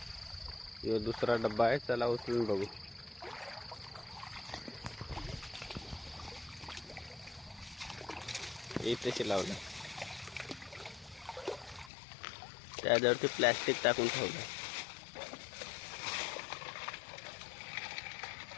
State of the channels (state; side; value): drops out; right; at 11.9 s